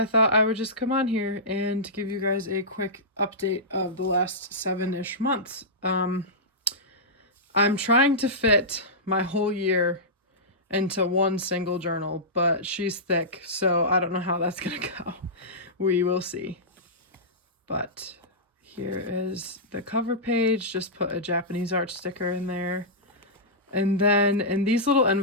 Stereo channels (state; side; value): normal; both; correlation -0.15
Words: thought I would just come on here and give you guys a quick update of the last 7-ish months. I'm trying to fit my whole year into one single journal, but she's thick, so I don't know how that's gonna go. We will see. But here is the cover page. Just put a Japanese art sticker in there. And then in these little